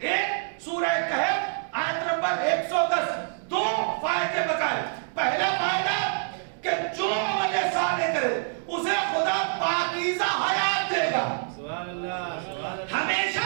سورہ کہف آیت نمبر 110، دو فائدے بتائے۔ پہلا فائدہ کہ جو عمل صالح کرے اسے خدا پاکیزہ حیات دے گا، ہمیشہ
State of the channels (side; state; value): left; silent; digital silence